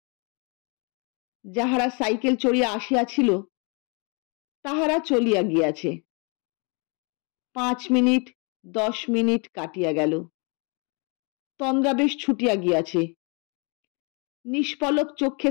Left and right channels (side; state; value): right; quieter; 34.1 dB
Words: যাহারা সাইকেল চড়িয়া আসিয়াছিল তাহারা চলিয়া গিয়াছে। 5 মিনিট 10 মিনিট কাটিয়া গেল। তন্দ্রা বেশ ছুটিয়া গিয়াছে। নিষ্পলক